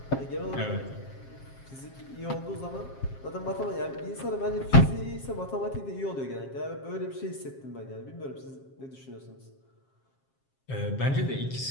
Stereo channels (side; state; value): right; late; 7.5 ms